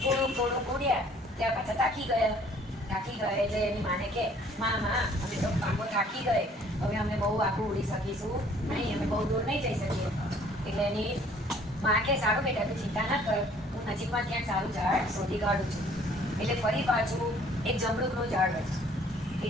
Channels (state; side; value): normal; both; correlation 0.57